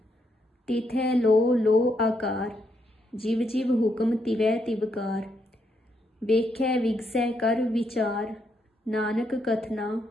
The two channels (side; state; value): both; normal; correlation 0.77